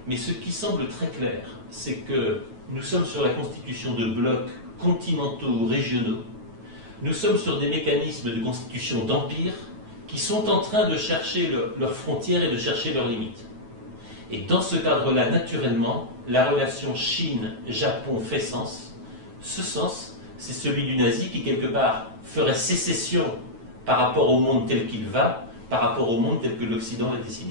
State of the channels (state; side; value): late; left; 9.2 ms